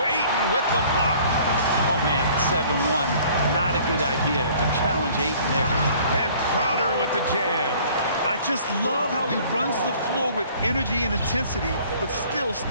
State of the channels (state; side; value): inverted; both; correlation -0.54